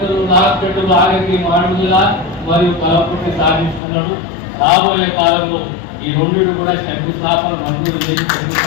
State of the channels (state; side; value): drops out; right; at 3.8 s